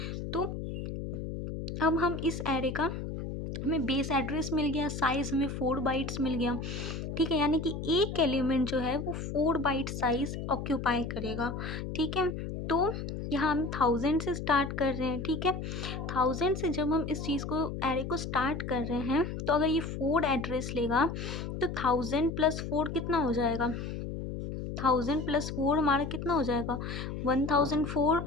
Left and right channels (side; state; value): left; noise; hum, 5 dB below the sound